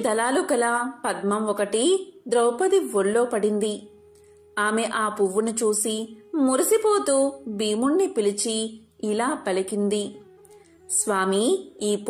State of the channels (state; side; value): identical; both; correlation 1.00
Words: దళాలు కల పద్మం ఒకటి ద్రౌపది ఒళ్ళో పడింది. ఆమె ఆ పువ్వును చూసి మురిసిపోతూ భీముణ్ణి పిలిచి ఇలా పలికింది: స్వామి, ఈ